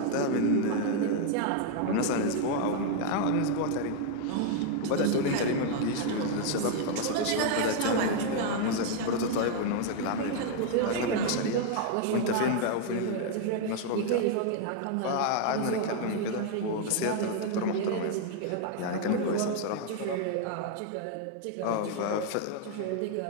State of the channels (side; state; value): both; different; correlation 0.01